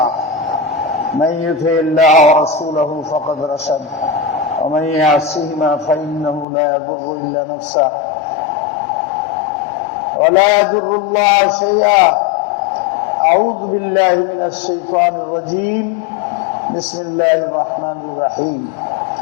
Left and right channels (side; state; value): right; drops out; at 6.5 s